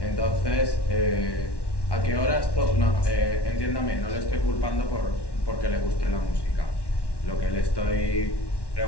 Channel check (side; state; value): right; late; 1.1 ms